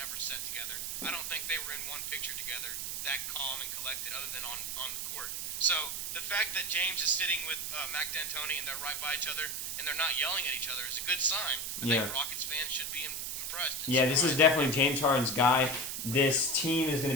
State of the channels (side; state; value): right; noise; hiss, 3 dB below the sound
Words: sat together. I don't think they were in one picture together that calm and collected other than on the court. So the fact that James is sitting with Mike D'Antoni and they're right by each other and they're not yelling at each other is a good sign. I think Rockets fans should be impressed. Yeah, this is definitely James Harden's guy. This team is going